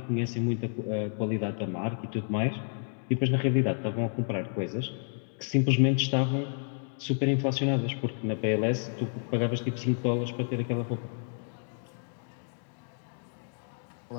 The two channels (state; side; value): silent; right; 58 dB below the other